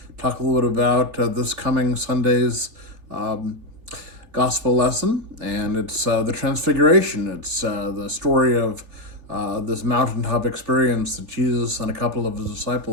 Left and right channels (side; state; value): left; late; 3.4 ms